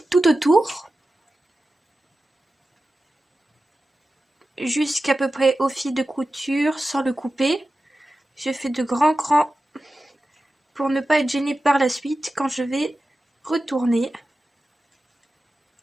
tout autour, jusqu'à peu près au fil de couture sans le couper. Je fais de grands crans pour ne pas être gênée par la suite quand je vais retourner.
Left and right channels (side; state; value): both; normal; correlation 0.94